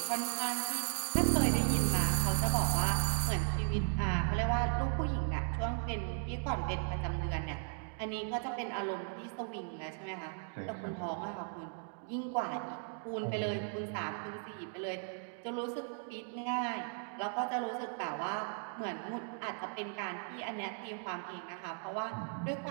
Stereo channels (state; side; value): silent; left; 53 dB below the other